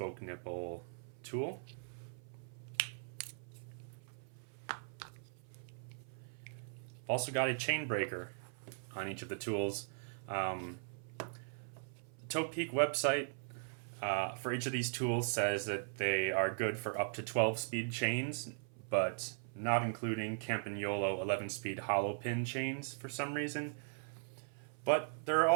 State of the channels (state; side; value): silent; left; 52 dB below the other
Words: nipple tool. Also got a chain breaker on each of the tools. The Topeak website for each of these tools says that they are good for up to 12-speed chains, but not including Campagnolo 11-speed hollow pin chains for some reason. But there are